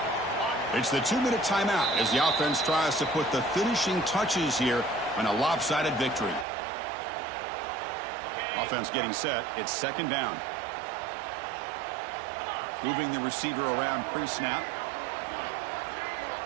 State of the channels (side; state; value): left; drops out; at 6.5 s